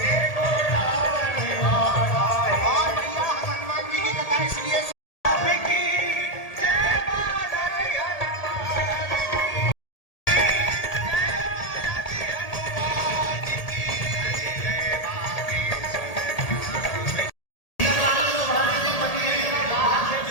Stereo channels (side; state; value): right; late; 1.8 ms